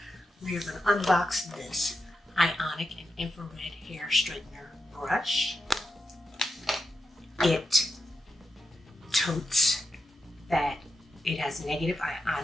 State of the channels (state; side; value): normal; both; correlation 0.88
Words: We are going to unbox this Ionic and infrared hair straightener brush. It totes that it has negative